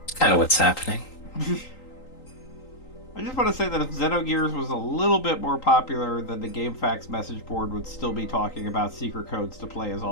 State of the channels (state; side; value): late; right; 3.8 ms